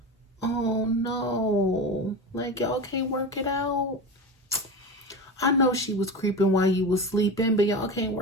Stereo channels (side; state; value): both; normal; correlation 0.26